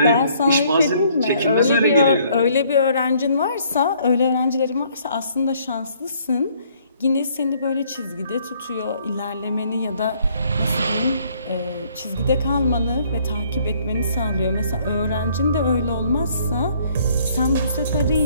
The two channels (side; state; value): both; inverted; correlation -0.63